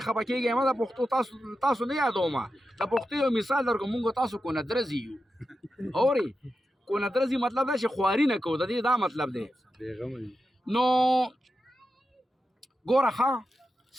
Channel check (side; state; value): both; normal; correlation 0.90